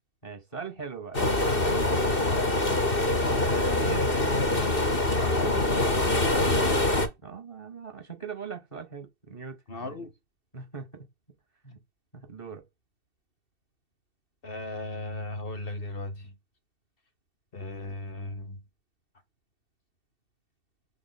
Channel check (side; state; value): right; late; 2.7 ms